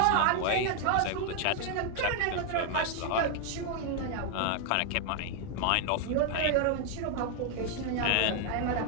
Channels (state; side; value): different; both; correlation 0.00